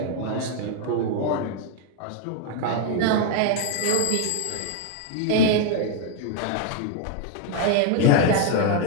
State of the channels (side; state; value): both; different; correlation 0.00